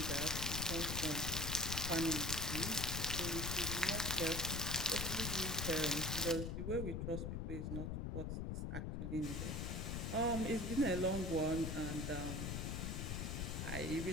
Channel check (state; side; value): noise; left; rumble, 2 dB below the sound